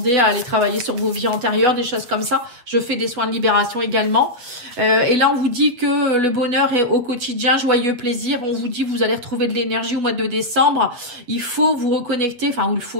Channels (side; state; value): left; late; 8.2 ms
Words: à aller travailler sur vos vies antérieures, des choses comme ça. Je fais des soins de libération également. Et là, on vous dit que le bonheur est au quotidien, joyeux plaisir. On vous dit que vous allez retrouver de l'énergie au mois de décembre. Il faut vous reconnecter, enfin, il